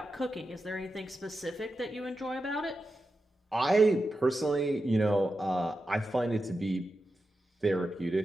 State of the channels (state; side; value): normal; both; correlation 0.90